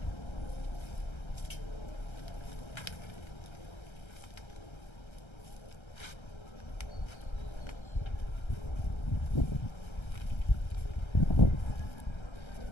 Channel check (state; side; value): late; right; 1.3 ms